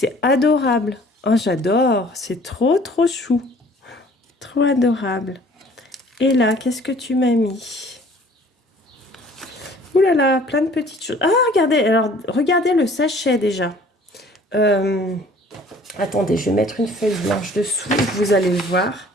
adorable. Oh, j'adore. C'est trop, trop chou. Trop adorable. Et là, qu'est-ce que tu m'as mis? Ouh là là, plein de petites choses. Ah, regardez. Alors, regardez le sachet déjà. Attendez, je vais mettre une feuille blanche dessous. Vous allez le voir.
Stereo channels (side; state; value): both; normal; correlation 0.52